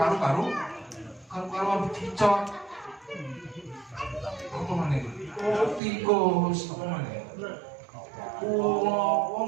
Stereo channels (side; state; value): left; drops out; at 5.8 s